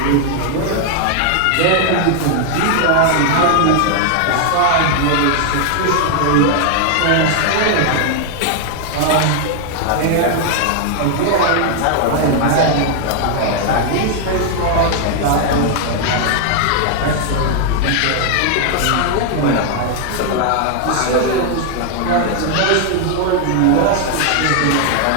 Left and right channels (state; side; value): different; both; correlation 0.00